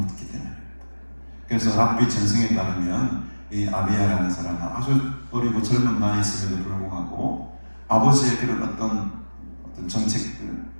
때문입니다. 그래서 랍비 전승에 따르면 이 아비야라는 사람은 아주 어리고 젊은 나이였음에도 불구하고 아버지의 그런 어떤 정책들,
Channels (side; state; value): both; inverted; correlation -1.00